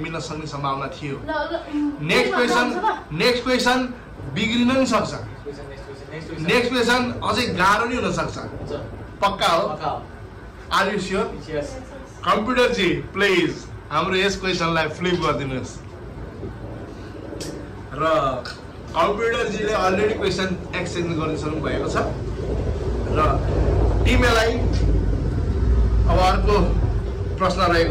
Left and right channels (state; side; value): identical; both; correlation 1.00